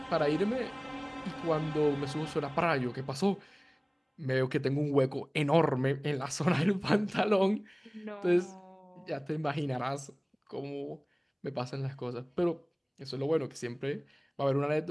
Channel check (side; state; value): both; identical; correlation 1.00